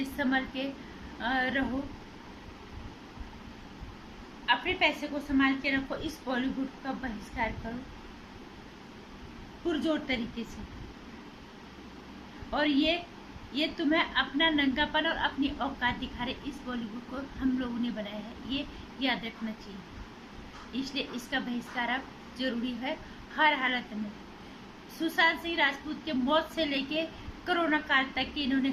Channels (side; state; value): both; identical; correlation 1.00